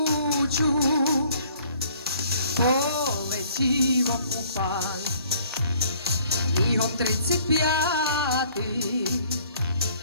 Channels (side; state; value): both; inverted; correlation -0.58